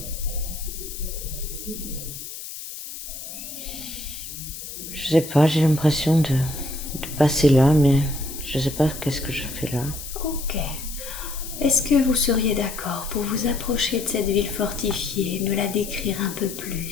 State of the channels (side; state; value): left; noise; hiss, 10 dB below the sound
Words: je sais pas, j'ai l'impression de passer là, mais je sais pas qu'est-ce que je fais là. Ok. Est-ce que vous seriez d'accord pour vous approcher de cette ville fortifiée, me la décrire un peu